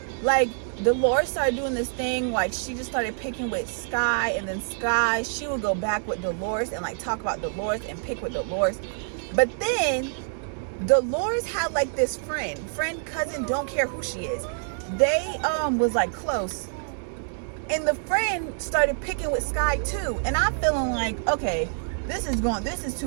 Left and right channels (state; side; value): silent; left; 60 dB below the other